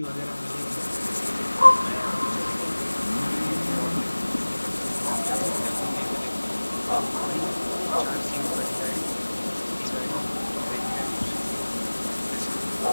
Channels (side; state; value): both; inverted; correlation -1.00